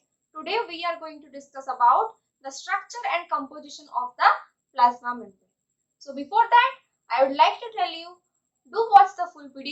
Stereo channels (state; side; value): identical; both; correlation 1.00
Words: today we are going to discuss about the structure and composition of the plasma membrane. So before that, I would like to tell you, do watch the full